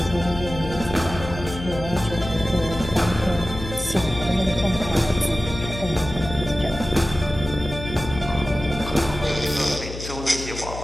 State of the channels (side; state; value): left; noise; hum, 10 dB below the sound